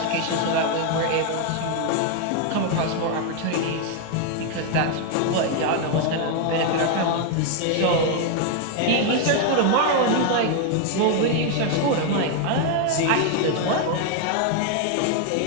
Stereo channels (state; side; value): different; both; correlation 0.01